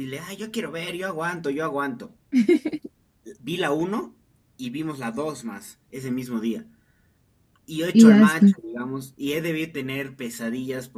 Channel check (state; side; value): identical; both; correlation 1.00